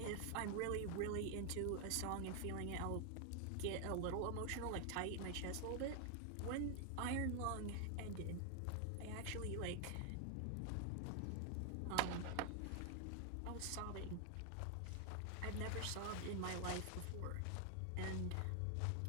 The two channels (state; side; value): different; both; correlation 0.00